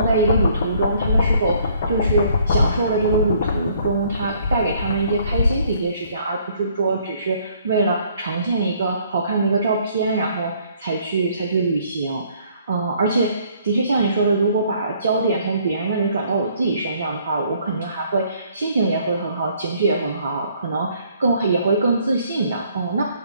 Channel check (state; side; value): inverted; both; correlation -0.63